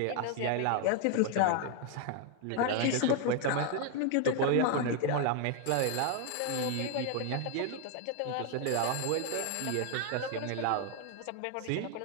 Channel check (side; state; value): both; different; correlation 0.01